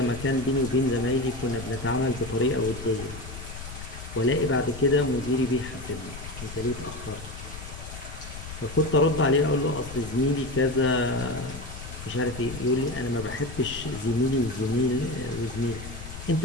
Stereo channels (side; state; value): left; noise; rumble, 11 dB below the sound